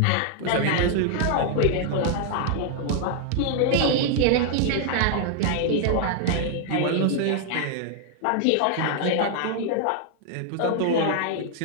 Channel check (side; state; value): both; different; correlation 0.00